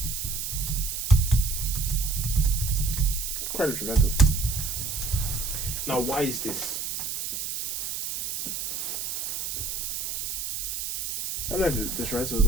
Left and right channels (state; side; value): noise; right; hiss, 4 dB below the sound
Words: quite detrimental. Now, why is this? I don't know if detrimental is